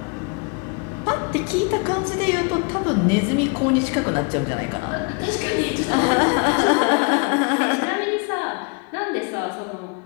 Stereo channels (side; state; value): right; quieter; 32.8 dB